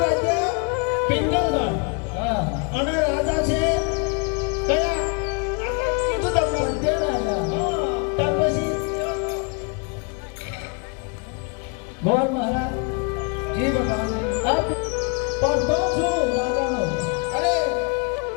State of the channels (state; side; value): quieter; right; 34.4 dB